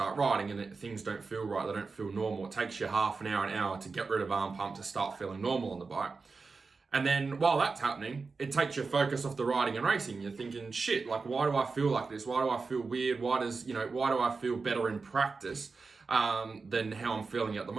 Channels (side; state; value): left; quieter; 4.4 dB